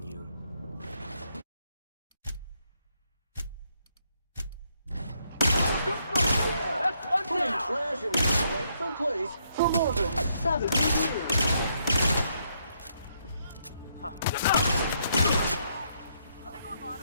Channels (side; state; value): both; inverted; correlation -0.74